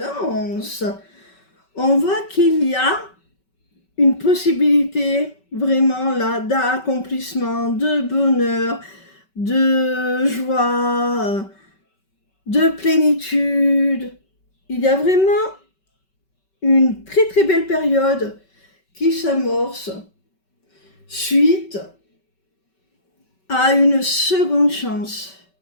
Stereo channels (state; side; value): late; right; 5.3 ms